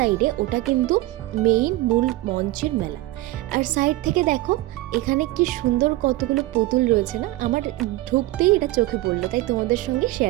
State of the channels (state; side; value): quieter; left; 18.0 dB